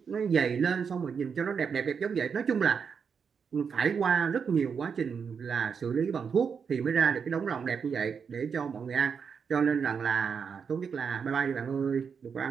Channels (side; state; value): left; quieter; 6.3 dB